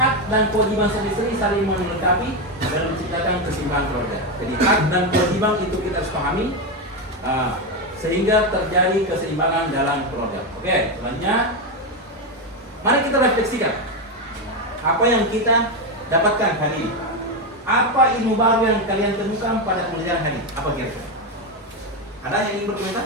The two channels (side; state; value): both; normal; correlation 0.10